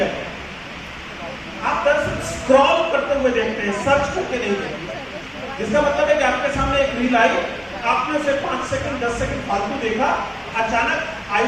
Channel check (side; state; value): both; identical; correlation 1.00